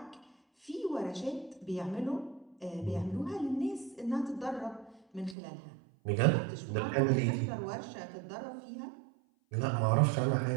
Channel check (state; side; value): drops out; left; at 5.4 s